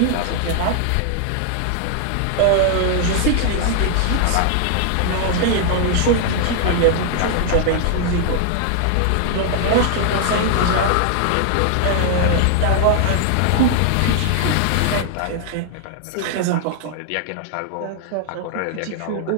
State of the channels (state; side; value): different; both; correlation 0.00